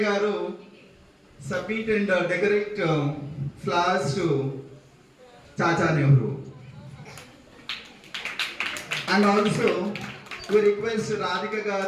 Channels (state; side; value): identical; both; correlation 1.00